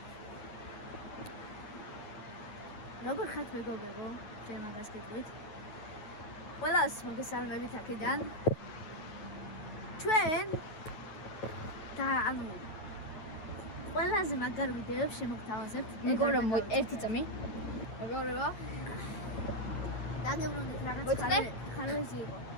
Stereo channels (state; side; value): late; right; 9.5 ms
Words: როგორ ხართ მეგობრებო? ჩვენ მაგას გეტყვით. ყველას მოგესალმებით აქედან. ჩვენ და ანუ ყველაზე მაგარ ვიდეოებს შემოგთავაზებთ. მეგობრებო, ერთი წამი. მეგობრებო. დაგებრუნდით რაღაც ხარვეზი იყო.